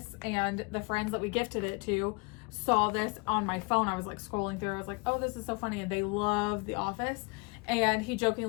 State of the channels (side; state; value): right; quieter; 29.5 dB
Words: and the friends that we gifted it to saw this on my phone. I was like scrolling through. I was like, oh, this is so funny. And they love The Office. And he